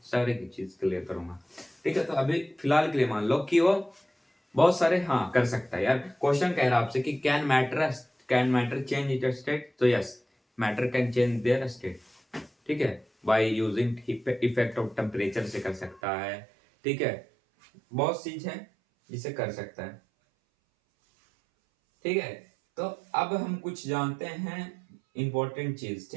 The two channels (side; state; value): left; drops out; at 16.0 s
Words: सारे की चीज क्लियर करूंगा। ठीक है, तो अभी फिलहाल के लिए मान लो कि वो बहुत सारे हाँ कर सकता है यार। क्वेश्चन कह रहा है आपसे कि can matter change it state, तो yes, matter can change their state. ठीक है, by using effect of temperature से कर सकता है। ठीक है, बहुत चीज है जिसे कर सकता है। ठीक है, तो अब हम कुछ जानते हैं इंपॉर्टेंट चीज।